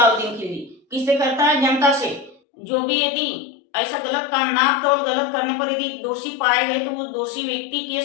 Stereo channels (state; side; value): drops out; right; at 2.4 s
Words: खिलजी। किससे करता है, जनता से। जो भी यदि ऐसा गलत काम, नाप तोल गलत करने पर यदि दोषी पाए गए तो उस दोषी व्यक्ति के